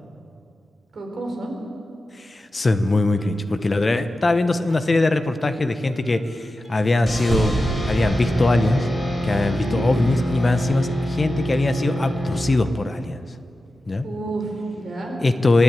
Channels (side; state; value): both; normal; correlation 0.93